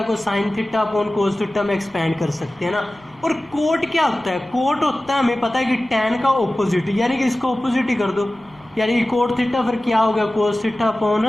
को sine theta upon cos theta में एक्सपेंड कर सकते हैं ना। और कोट क्या होता है, कोट होता है, हमें पता है कि टैन का ऑपोजिट, यानी कि इसको ऑपोजिट ही कर दो, यानी कि कोट थीटा फिर क्या हो गया, कोस थीटा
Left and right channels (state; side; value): noise; left; rumble, 30 dB below the sound